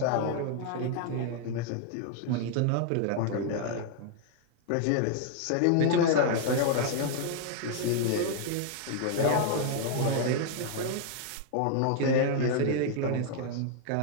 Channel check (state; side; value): different; both; correlation 0.00